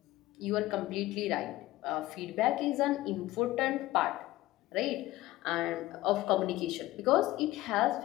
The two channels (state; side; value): quieter; right; 17.1 dB